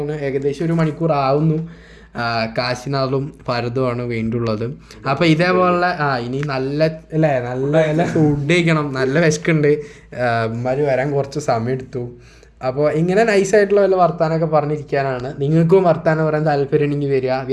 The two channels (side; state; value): both; identical; correlation 1.00